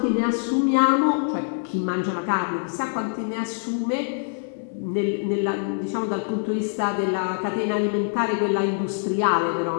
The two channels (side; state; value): right; silent; 62 dB below the other